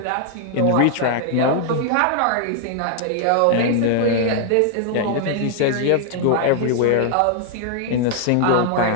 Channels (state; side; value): different; both; correlation 0.00